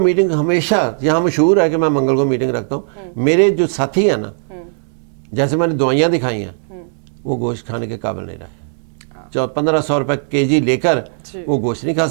ہمیشہ یہاں مشہور ہے کہ میں منگل کو میٹنگ رکھتا ہوں. میرے جو ساتھی ہیں نا، جیسے میں نے دوائیاں دکھائی ہیں، وہ گوشت کھانے کے قابل نہیں رہے. 1500 روپے kg لے کر وہ گوشت نہیں کھا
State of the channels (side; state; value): left; silent; digital silence